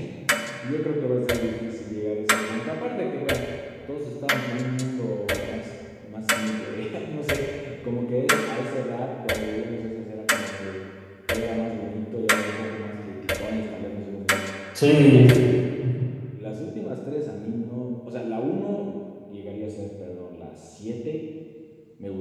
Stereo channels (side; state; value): both; identical; correlation 1.00